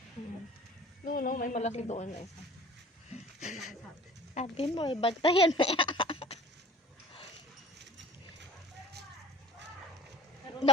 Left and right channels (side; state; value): both; normal; correlation 0.47